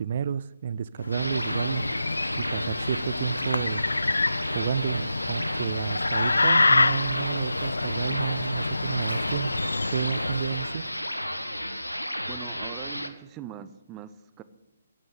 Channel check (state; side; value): inverted; both; correlation -0.87